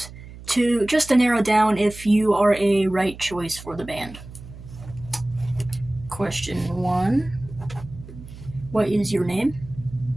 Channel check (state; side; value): noise; right; hum, 16 dB below the sound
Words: to narrow down if you are a right choice for the band. Question 1. What is your name?